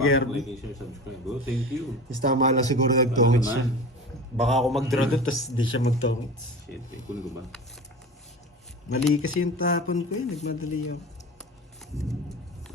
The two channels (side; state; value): both; normal; correlation 0.33